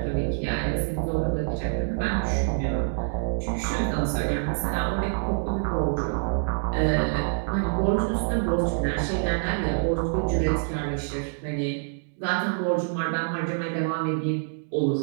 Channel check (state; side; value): silent; left; digital silence